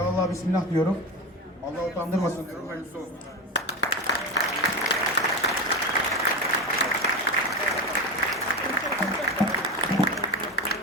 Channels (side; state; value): both; normal; correlation 0.21